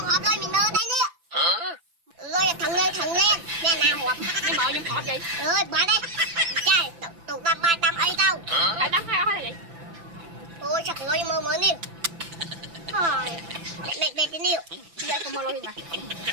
hộp lôi mình nơ đây nè. Lôi thằng lên nè nào hộp. Nhưng mà nhưng hộp gì? Rồi bỏ đây. Trời tụi ba ba tâm ấy đâu. Phải đắng hay là gì? Ôi chắc lôi mơ nè. Thôi. Mẹ cái niệu. Giờ không mơ lôi nè.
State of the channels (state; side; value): late; left; 5.9 ms